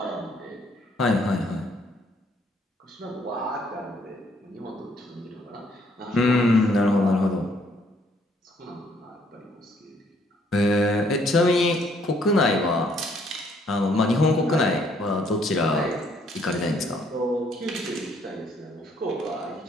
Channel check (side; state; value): both; normal; correlation 0.66